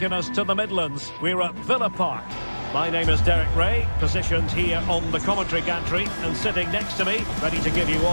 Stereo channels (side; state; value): both; inverted; correlation -1.00